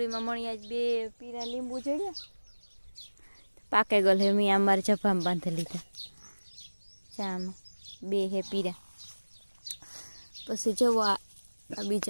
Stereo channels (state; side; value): inverted; both; correlation -1.00